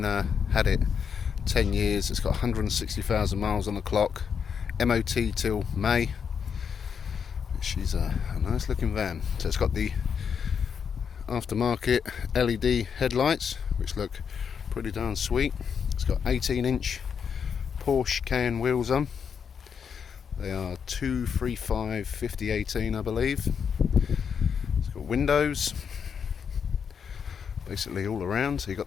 had it 10 years. It's got 160,000 miles on the clock, MOT till May. She's a nice looking van. So it's got the aftermarket LED headlights, which look pretty darn sweet. It's got 18-inch Porsche Cayenne wheels on. They are 235 5018, I believe. It's got windows basically all around. So you've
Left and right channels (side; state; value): right; quieter; 6.9 dB